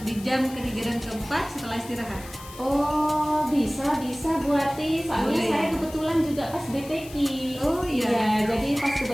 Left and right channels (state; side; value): noise; left; hiss, 17 dB below the sound